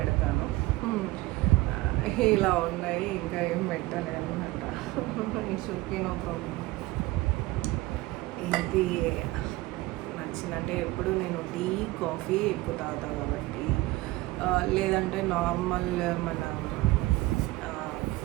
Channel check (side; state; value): left; quieter; 19.2 dB